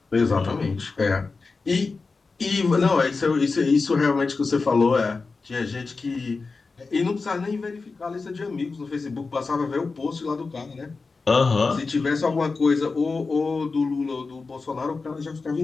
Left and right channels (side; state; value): right; quieter; 4.2 dB